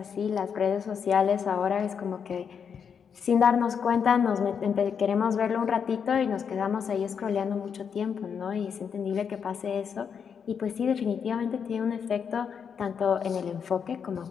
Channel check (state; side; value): quieter; right; 7.0 dB